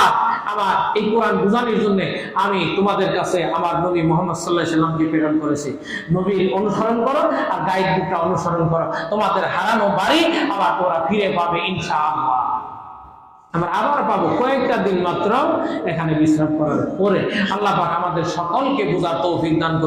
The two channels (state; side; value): identical; both; correlation 1.00